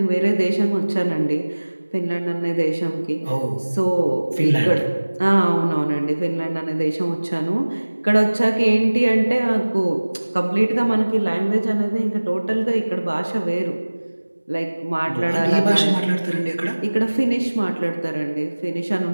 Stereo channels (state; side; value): inverted; both; correlation -1.00